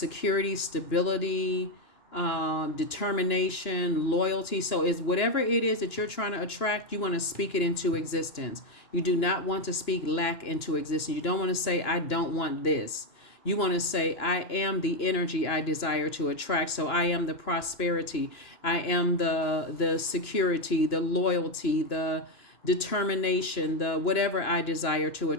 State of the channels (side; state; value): right; late; 2.9 ms